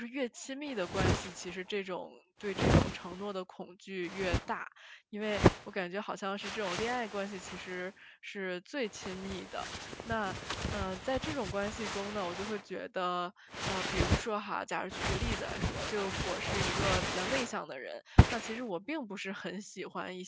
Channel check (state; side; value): identical; both; correlation 1.00